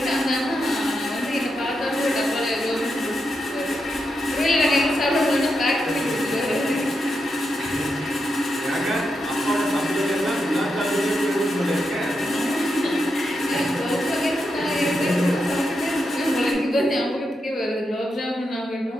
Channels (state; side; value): normal; both; correlation 0.85